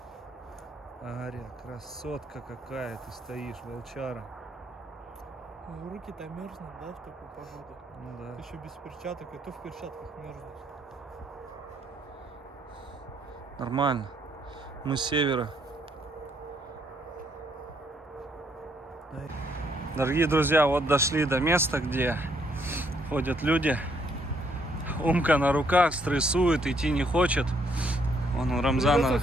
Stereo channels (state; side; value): normal; both; correlation 0.70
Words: Ария, красотка какая, ты стоишь, волчара. Руки-то мерзнут, да, в такую погоду? Ну да. Ты еще без перчаток, и то в перчатках мерзнешь. Нормально. Мы с севера. Дорогие друзья, вот дошли до места, где ходят люди. Умка на руках, стрессует, идти не хочет. Он Рамзана...